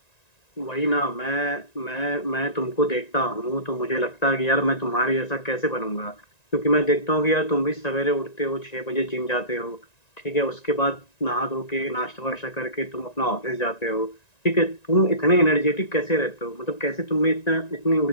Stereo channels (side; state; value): right; late; 1.9 ms